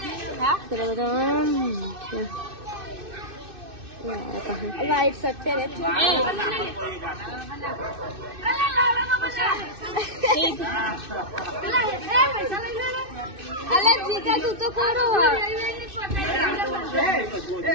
વાઈટ શર્ટ પહેરે છે. અલે જીગા તું તો કોરો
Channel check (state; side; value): late; left; 2.6 ms